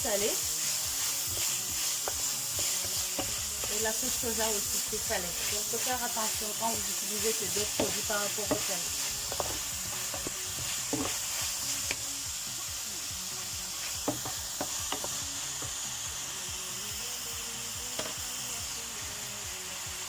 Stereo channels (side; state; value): both; identical; correlation 1.00